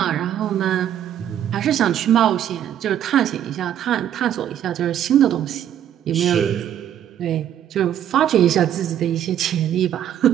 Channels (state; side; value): quieter; left; 10.5 dB